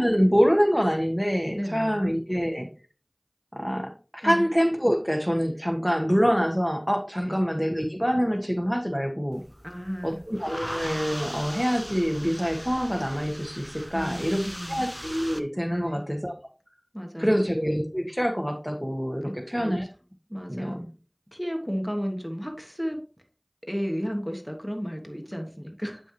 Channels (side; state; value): both; identical; correlation 1.00